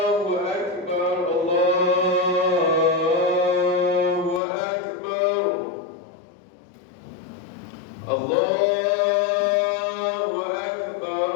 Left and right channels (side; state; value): right; drops out; at 4.4 s